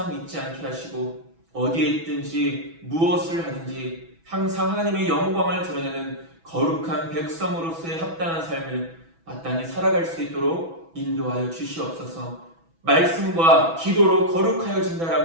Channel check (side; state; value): left; late; 6.1 ms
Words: 잊지 않게 하시고 어디에 있든지 무엇을 하든지 항상 하나님의 영광을 드러내는 거룩한 백성으로서의 합당한 삶을 마땅히 살아갈 수 있도록 인도하여 주시옵소서. 말씀과 기도로